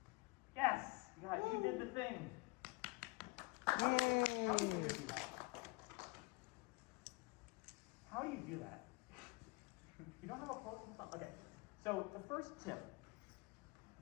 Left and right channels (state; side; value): quieter; right; 26.0 dB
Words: Yes, you did the thing. Yay! How do you do that? You don't have a quote? Okay. So the first tip